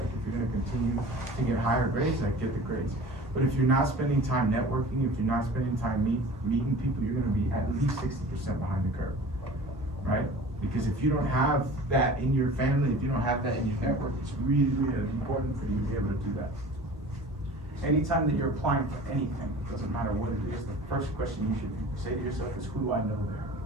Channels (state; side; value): normal; both; correlation 0.41